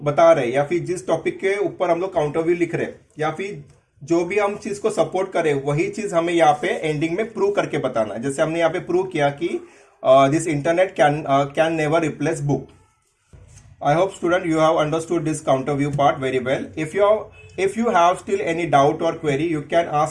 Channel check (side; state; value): both; identical; correlation 1.00